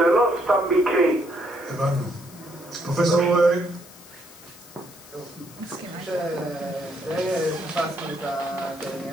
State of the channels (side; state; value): left; noise; hiss, 20 dB below the sound